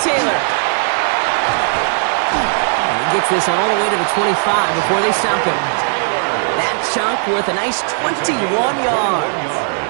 Taylor. And he gets this all the way to the 25 before they stop him. That chunk worth a nice 21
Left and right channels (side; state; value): left; silent; digital silence